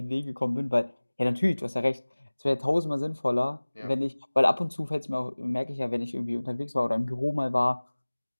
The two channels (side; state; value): both; inverted; correlation -1.00